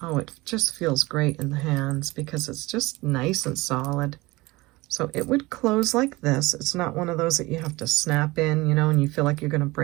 Oh, it just feels great in the hands because it's just nice and solid. So it would close like this. It's not one of those that you have to snap in, you know, and you feel like you're going to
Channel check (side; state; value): left; quieter; 21.5 dB